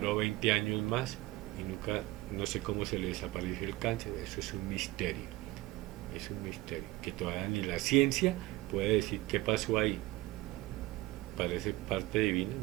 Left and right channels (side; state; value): left; quieter; 18.8 dB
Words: 20 años más y nunca, no sé cómo se le desapareció el cáncer. Eso es un misterio, que todavía ni la ciencia puede decir qué pasó ahí. Parece parte divina,